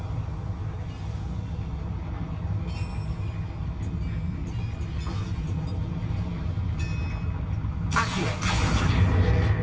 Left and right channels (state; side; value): identical; both; correlation 1.00